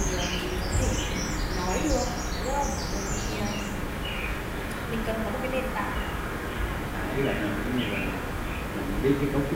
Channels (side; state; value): both; identical; correlation 1.00